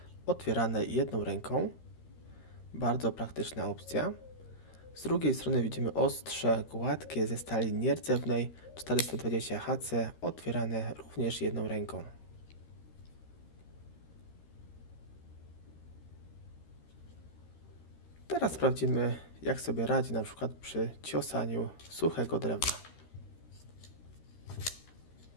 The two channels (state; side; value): late; right; 13 ms